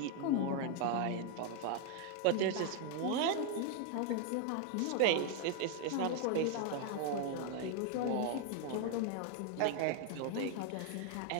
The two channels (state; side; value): different; both; correlation 0.00